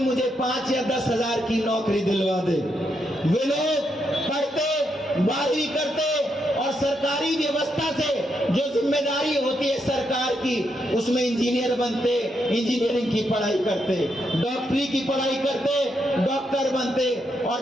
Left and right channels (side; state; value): both; normal; correlation 0.80